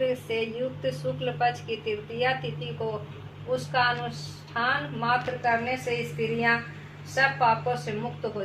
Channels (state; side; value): identical; both; correlation 1.00